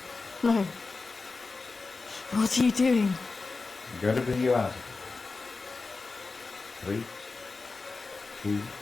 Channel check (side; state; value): right; quieter; 4.0 dB